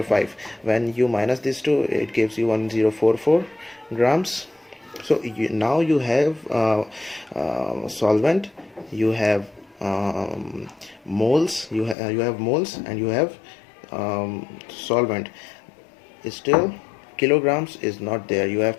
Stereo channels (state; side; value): drops out; right; at 12.0 s